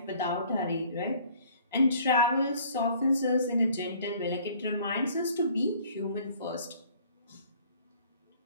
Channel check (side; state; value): both; inverted; correlation -0.55